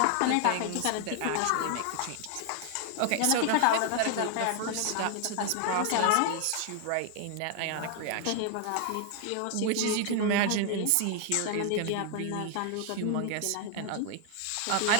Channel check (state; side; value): different; both; correlation 0.00